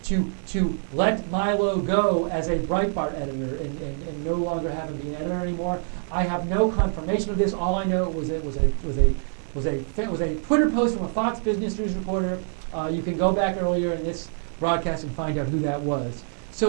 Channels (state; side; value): silent; left; digital silence